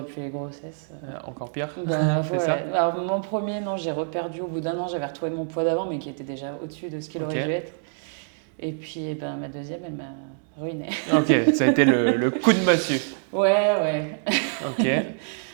les grossesses. Encore pire? Bah C'est ouais. ça? Alors mon premier, non, j'ai reperdu au bout d'un an, j'avais retrouvé mon poids d'avant, mais qui était déjà au-dessus de ce qu'il aurait Ok. dû être. Et puis eh ben, ma deuxième, elle m'a ruinée. Ok, ça a été le coup de massue. Ouais. Ok.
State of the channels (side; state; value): left; silent; digital silence